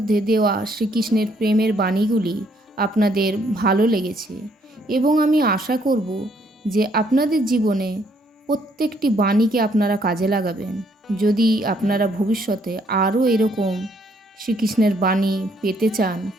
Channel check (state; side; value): normal; both; correlation 0.68